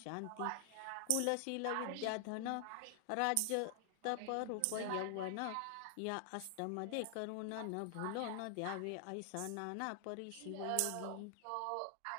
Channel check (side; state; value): both; different; correlation 0.00